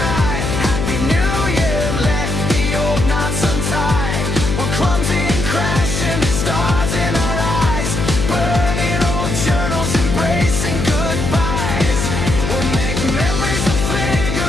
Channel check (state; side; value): noise; left; hum, 2 dB below the sound